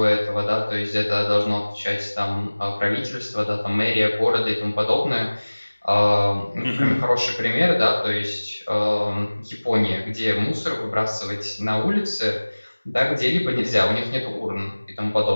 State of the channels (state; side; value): inverted; both; correlation -1.00